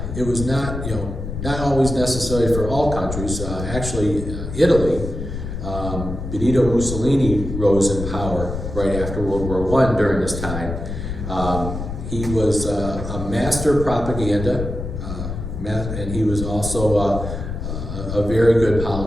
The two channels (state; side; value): noise; left; rumble, 6 dB below the sound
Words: not, not always necessary for all countries. Actually, Italy, Benito Mussolini rose in power right after World War I during this time. He was a master propaganda, and he was also a very good